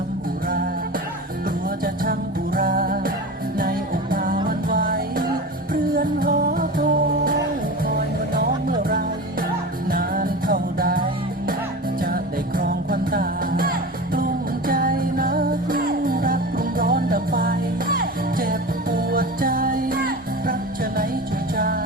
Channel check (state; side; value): normal; both; correlation 0.30